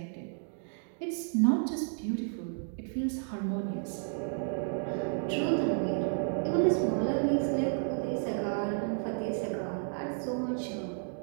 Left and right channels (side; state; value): left; silent; 56 dB below the other